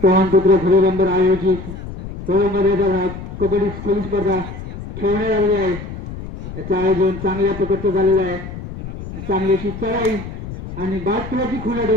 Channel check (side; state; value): left; noise; rumble, 10 dB below the sound